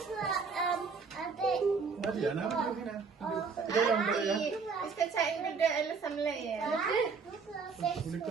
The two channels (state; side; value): quieter; left; 5.2 dB